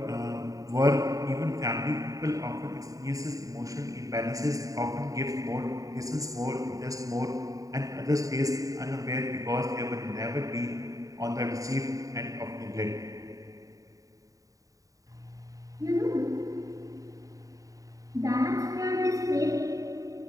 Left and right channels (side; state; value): left; late; 0.16 ms